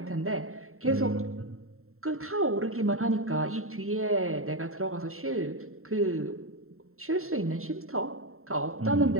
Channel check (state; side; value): late; left; 0.62 ms